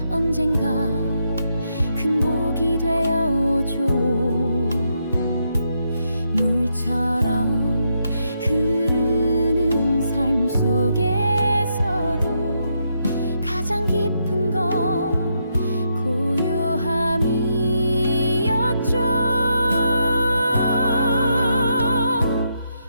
언젠가 큰 복이 되어오죠. 물처럼 흐르는 삶 속에서도 가장 깊은 건 고요함이었죠.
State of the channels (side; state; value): both; inverted; correlation -0.80